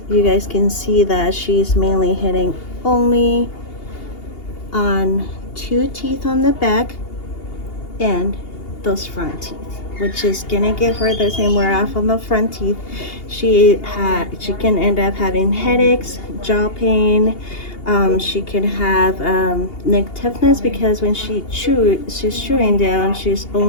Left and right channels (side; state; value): right; late; 2.8 ms